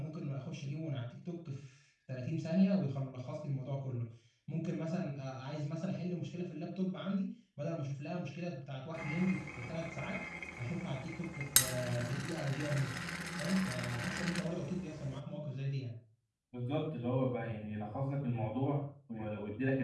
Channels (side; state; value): both; identical; correlation 1.00